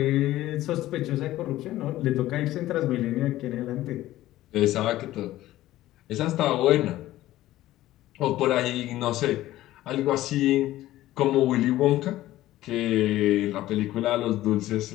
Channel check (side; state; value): right; quieter; 15.3 dB